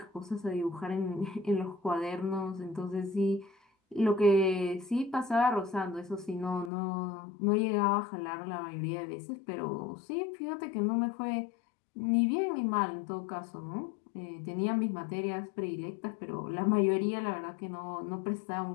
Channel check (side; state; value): right; drops out; at 6.7 s